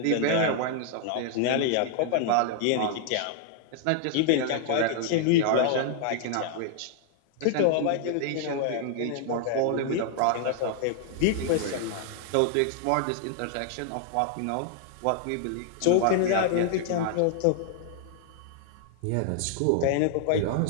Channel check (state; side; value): different; both; correlation 0.00